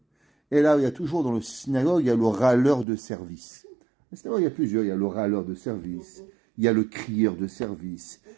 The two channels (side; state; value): left; drops out; at 2.9 s